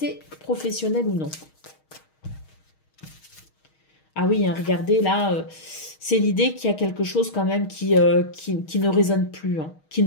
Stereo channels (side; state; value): right; late; 6.4 ms